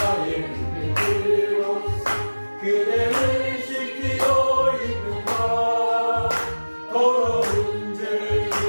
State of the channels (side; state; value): both; inverted; correlation -1.00